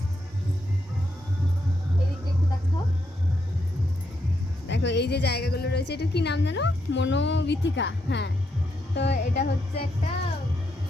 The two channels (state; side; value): normal; both; correlation 0.80